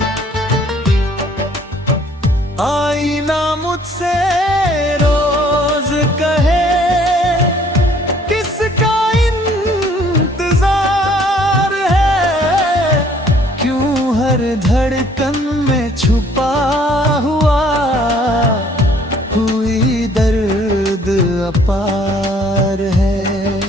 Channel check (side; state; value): both; normal; correlation 0.59